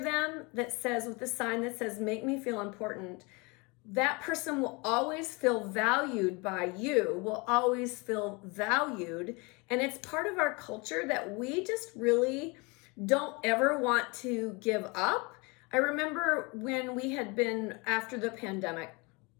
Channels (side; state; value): right; quieter; 28.0 dB